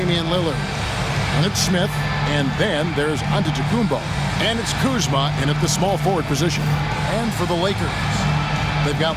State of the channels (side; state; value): both; identical; correlation 1.00